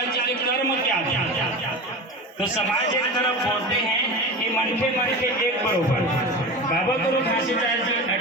जी के कर्म क्या थे? तो समाज एक तरफ बोलते हैं कि मन के एक बरोबर। बाबा गुरु घासीदास जी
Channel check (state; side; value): normal; both; correlation 0.28